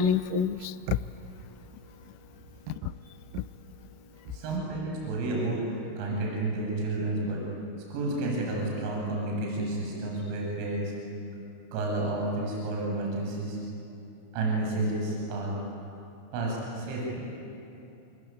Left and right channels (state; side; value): late; left; 32 ms